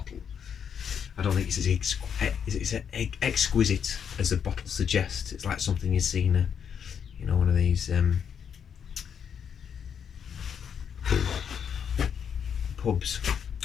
I don't think it's as exquisite as the bottle suggests. It's like something you've seen, you know, one of these pubs.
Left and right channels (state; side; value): quieter; right; 7.7 dB